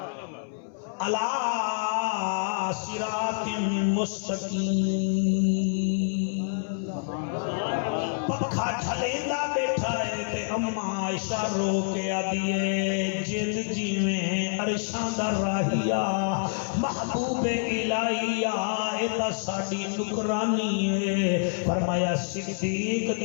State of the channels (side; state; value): right; silent; 60 dB below the other